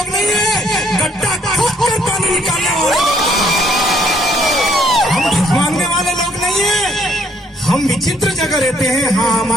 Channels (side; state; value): both; normal; correlation 0.66